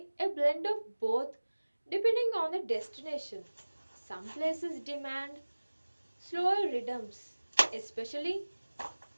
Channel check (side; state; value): both; inverted; correlation -1.00